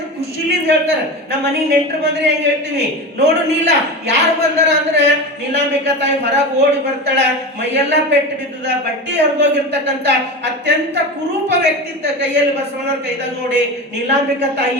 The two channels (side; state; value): both; normal; correlation 0.25